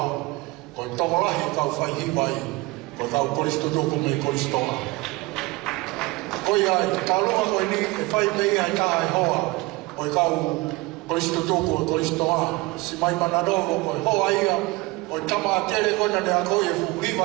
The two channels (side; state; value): left; quieter; 22.6 dB